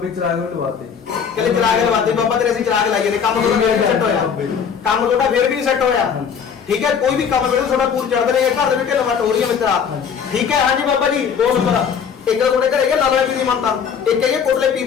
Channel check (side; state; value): right; quieter; 7.0 dB